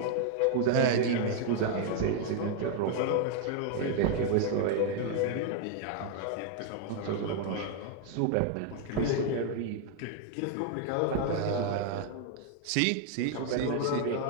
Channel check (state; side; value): different; both; correlation 0.00